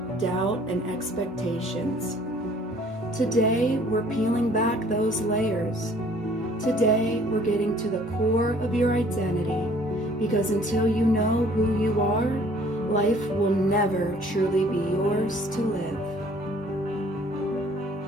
doubt, and expectations. Today, we're peeling back those layers. Today, we're getting to the core of your identity, because until you know who you are, life will never truly be yours to live.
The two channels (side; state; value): both; normal; correlation 0.56